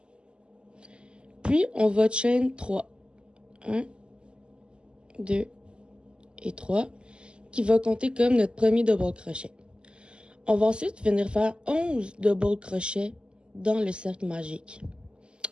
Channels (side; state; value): left; late; 0.050 ms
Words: Puis, on va chain 3. 1, 2 et 3, qui va compter comme notre premier double crochet. On va ensuite venir faire 11 double crochets dans le cercle magique,